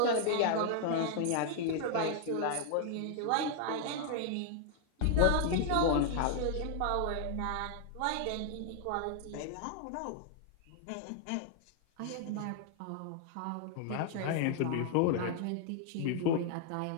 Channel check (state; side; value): different; both; correlation 0.00